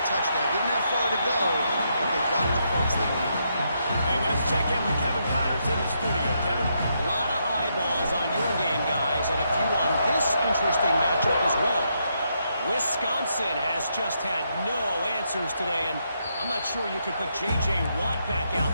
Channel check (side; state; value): both; inverted; correlation -0.79